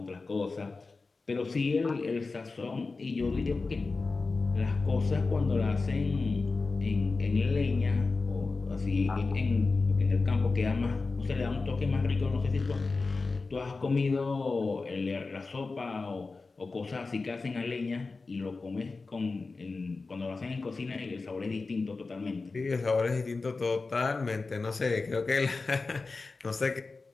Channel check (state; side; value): quieter; right; 3.9 dB